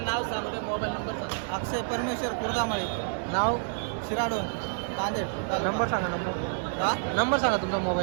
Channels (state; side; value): silent; left; digital silence